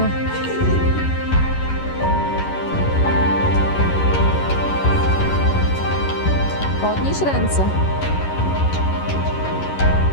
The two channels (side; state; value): right; late; 11 ms